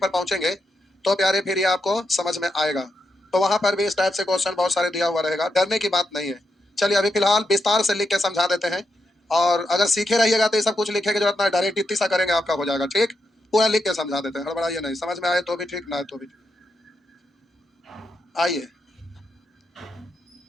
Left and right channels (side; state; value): both; normal; correlation 0.84